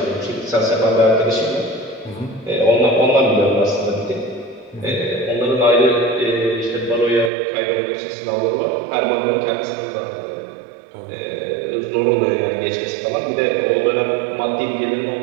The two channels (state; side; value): drops out; left; at 7.3 s